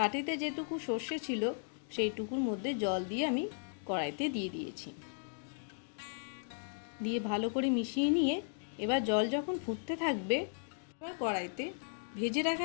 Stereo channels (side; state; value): right; silent; digital silence